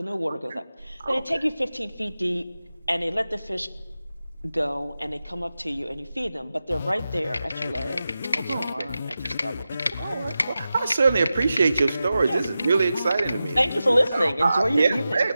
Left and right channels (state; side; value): inverted; both; correlation -0.93